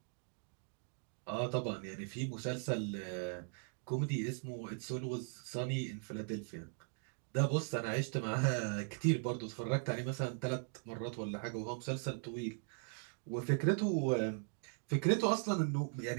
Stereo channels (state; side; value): silent; left; 52 dB below the other